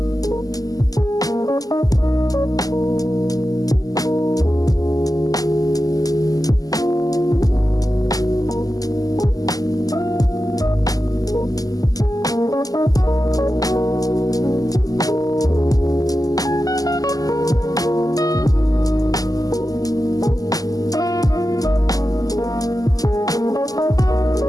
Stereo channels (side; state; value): right; late; 0.17 ms